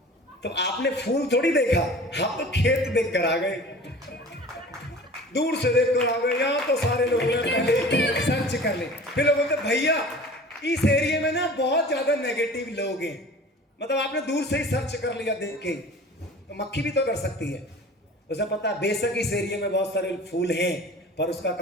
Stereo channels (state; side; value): normal; both; correlation 0.42